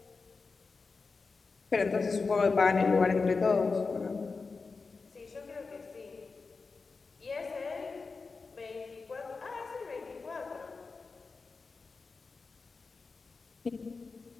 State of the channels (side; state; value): right; quieter; 4.3 dB